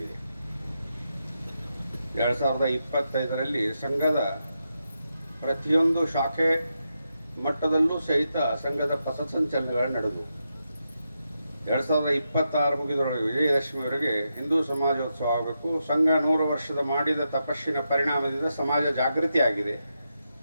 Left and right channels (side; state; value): both; inverted; correlation -0.86